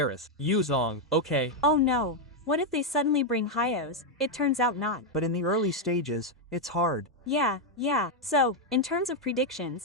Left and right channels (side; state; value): both; normal; correlation 0.02